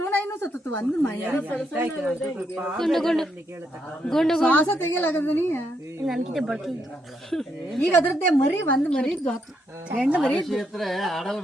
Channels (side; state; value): both; normal; correlation 0.77